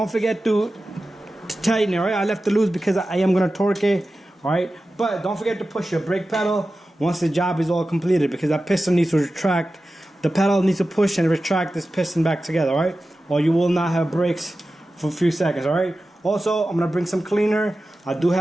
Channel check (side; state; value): both; normal; correlation 0.94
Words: forget to tighten it. All right, I left it loose because I am gonna torque it. All right, but don't forget to push your brake pedal once the job is all completed, because that piston needs to retract. The pedal needs to push and retract this piston back together, all right? Or you will not have brakes for a few seconds, all right? Also, I'm gonna bring some cleaner. I do